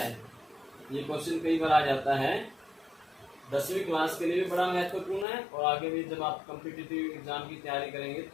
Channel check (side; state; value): right; drops out; at 5.2 s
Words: ये क्वेश्चन कई बार आ जाता है। 10वीं क्लास के लिए भी बड़ा महत्वपूर्ण है, और आगे भी जब आप कॉम्पिटिटिव एग्जाम की तैयारी करेंगे